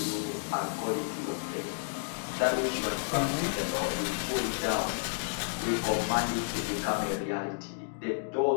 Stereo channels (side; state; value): right; silent; digital silence